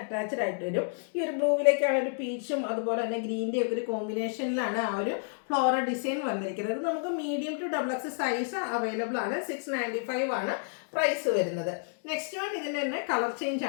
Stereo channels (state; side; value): silent; right; 58 dB below the other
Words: ആയിട്ട് വരും. ഈ ഒരു ബ്ലൂവിലേക്കാണ് ഒരു പീച്ചും അതുപോലെ തന്നെ ഗ്രീൻ്റെ ഒക്കെ ഒരു കോമ്പിനേഷനിലാണ് ആ ഒരു ഫ്ലോറൽ ഡിസൈൻ വന്നിരിക്കുന്നത്. ഇത് നമുക്ക് medium to XXL size available ആണ്. 695 ആണ് പ്രൈസ് വരുന്നത്. നെക്സ്റ്റ് വൺ ഇതിൻ്റെ തന്നെ കളർ ചേഞ്ച്